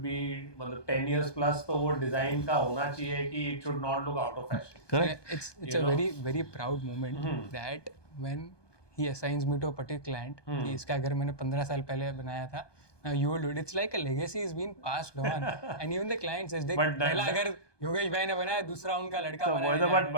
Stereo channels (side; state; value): right; late; 1.2 ms